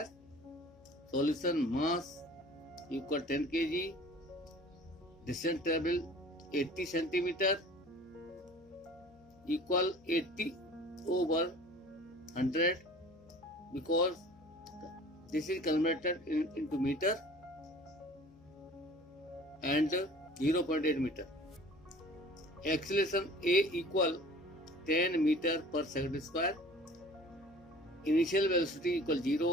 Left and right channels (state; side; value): noise; left; hum, 27 dB below the sound